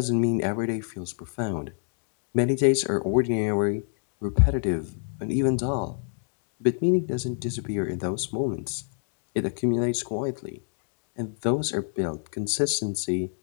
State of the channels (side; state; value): right; silent; digital silence